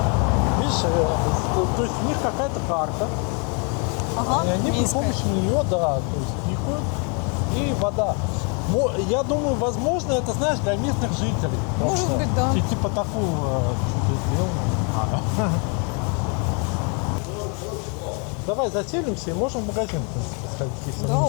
Видишь, то есть у них какая-то карта. Ага, И они при минская. помощи нее, да, то есть пикают, и вода. Я думаю, возможно, это, знаешь, для местных жителей. Может Просто быть, да. Типа такого что-то сделано. Давай заселимся и можем в магазин, в принципе, сходить, если Да, мы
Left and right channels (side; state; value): right; quieter; 35.9 dB